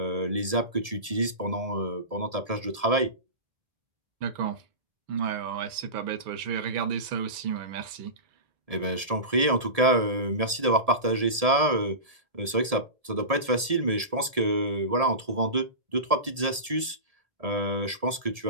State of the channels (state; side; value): late; left; 1.7 ms